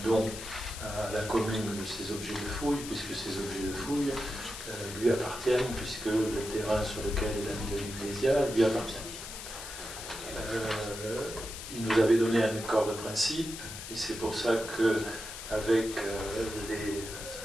don à la commune de ces objets de fouille, puisque ces objets de fouille lui appartiennent, puisque le terrain sur lequel il a mis l'Ecclésia lui appartient. Il nous avait donné un accord de principe, et c'est pour ça qu'avec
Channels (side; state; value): left; noise; hiss, 10 dB below the sound